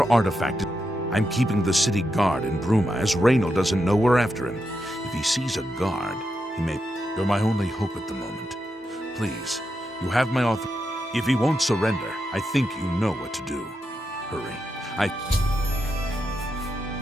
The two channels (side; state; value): both; normal; correlation 0.85